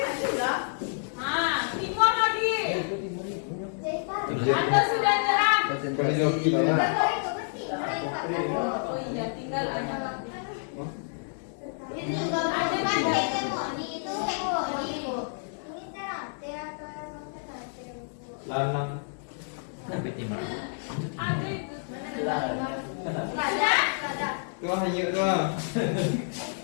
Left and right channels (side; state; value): right; silent; 59 dB below the other